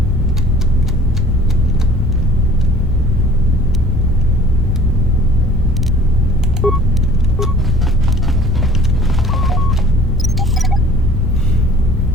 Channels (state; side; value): normal; both; correlation 0.50